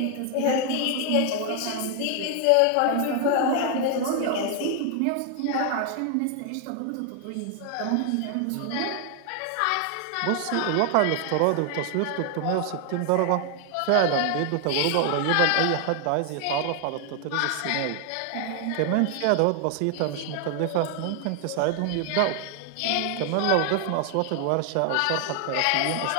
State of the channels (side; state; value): both; different; correlation 0.00